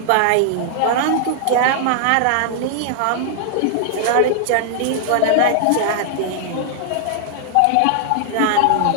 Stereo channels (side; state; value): both; different; correlation -0.01